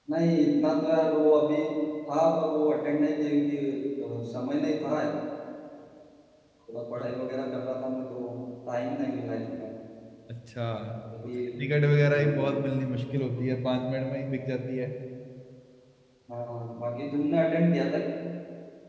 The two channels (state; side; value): identical; both; correlation 1.00